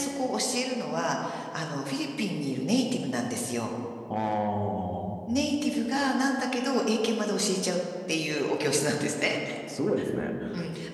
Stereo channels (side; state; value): both; identical; correlation 1.00